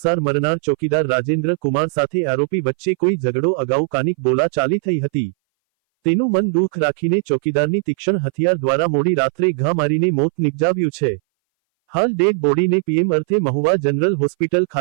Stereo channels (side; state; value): left; silent; 61 dB below the other